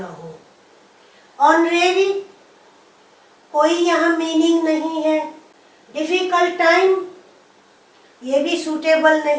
हो। ऑनरेरी, कोई यहाँ मीनिंग नहीं है। डिफिकल्ट टाइम, ये भी सूटेबल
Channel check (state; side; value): identical; both; correlation 1.00